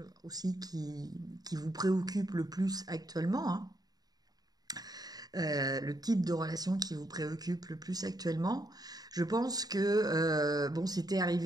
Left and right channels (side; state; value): left; late; 0.19 ms